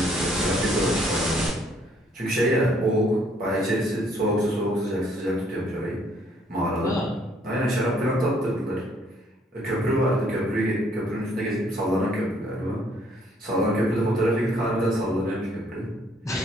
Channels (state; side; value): normal; both; correlation 0.65